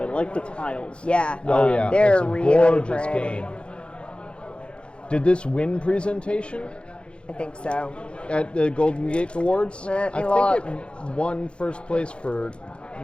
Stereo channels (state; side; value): late; right; 0.057 ms